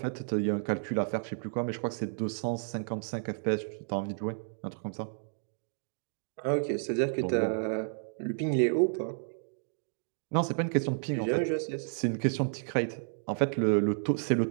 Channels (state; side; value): silent; left; digital silence